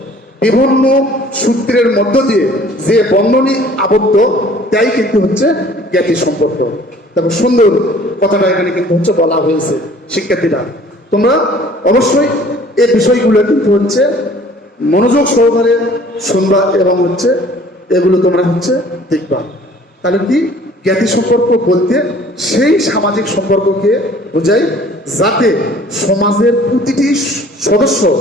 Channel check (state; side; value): normal; both; correlation 0.52